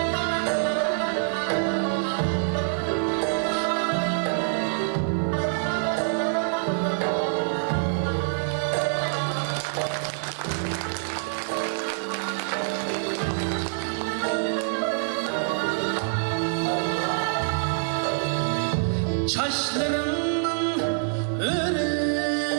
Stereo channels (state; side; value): silent; left; 55 dB below the other